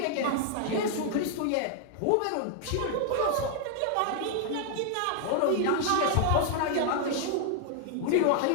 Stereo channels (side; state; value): both; different; correlation 0.00